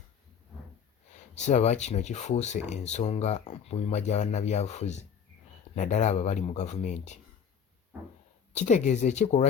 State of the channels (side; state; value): right; quieter; 7.3 dB